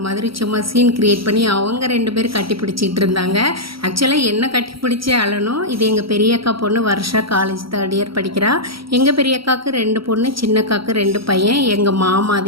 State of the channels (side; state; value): left; late; 0.75 ms